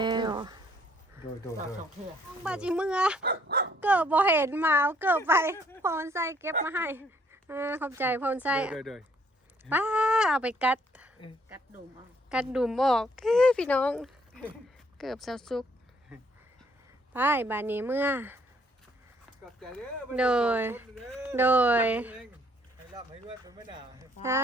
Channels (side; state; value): both; normal; correlation 0.65